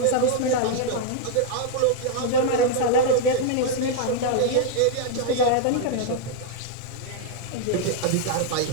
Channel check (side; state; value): both; different; correlation 0.00